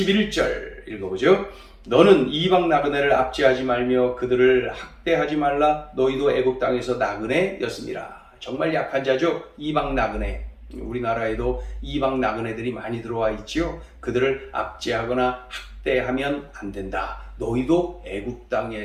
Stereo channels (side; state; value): both; identical; correlation 1.00